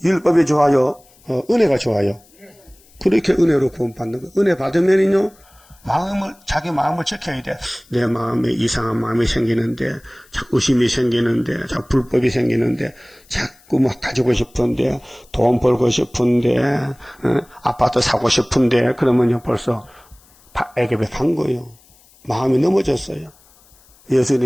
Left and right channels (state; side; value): noise; left; hiss, 29 dB below the sound